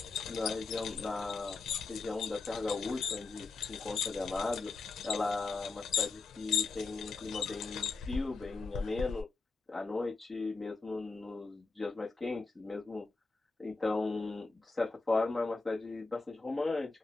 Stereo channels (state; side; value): quieter; right; 4.0 dB